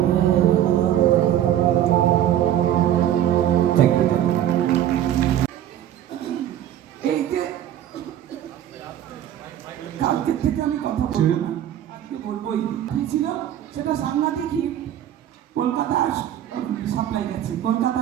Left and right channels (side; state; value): left; quieter; 11.4 dB